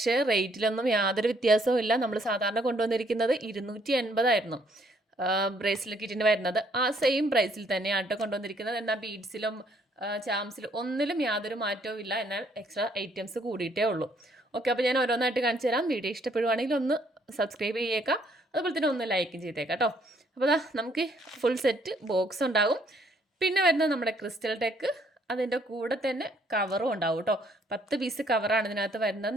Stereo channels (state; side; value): normal; both; correlation 0.67